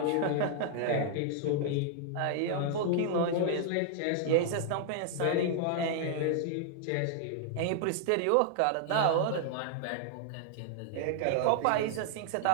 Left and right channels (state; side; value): different; both; correlation 0.00